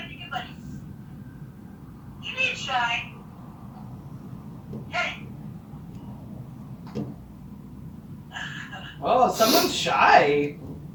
You need shy. Hey. Oh, someone's shy.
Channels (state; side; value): identical; both; correlation 1.00